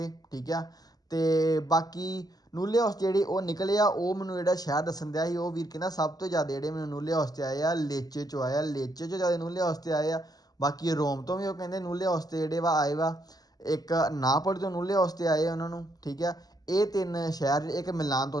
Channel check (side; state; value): right; late; 0.19 ms